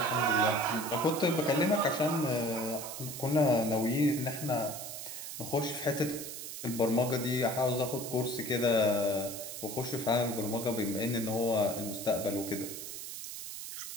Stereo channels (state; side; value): noise; right; hiss, 8 dB below the sound